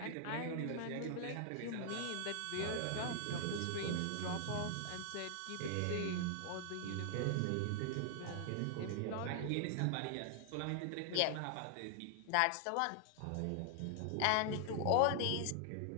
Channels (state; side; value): different; both; correlation 0.00